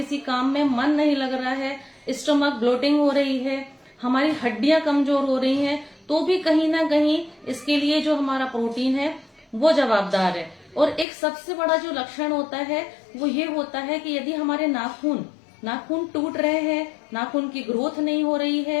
काम में मन नहीं लग रहा है, स्टमक ब्लोटिंग हो रही है, हमारी हड्डियां कमजोर हो रही हैं, तो भी कहीं ना कहीं इसके लिए जो हमारा प्रोटीन है वो जवाबदार है। और एक सबसे बड़ा जो लक्षण होता है वो ये होता है कि यदि हमारे नाखून टूट रहे हैं, नाखून की ग्रोथ नहीं हो रही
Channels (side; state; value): right; drops out; at 11.1 s